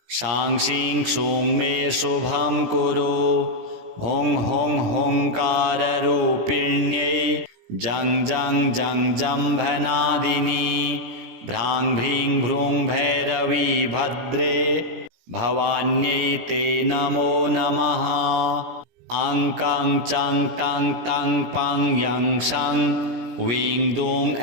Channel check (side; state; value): left; late; 17 ms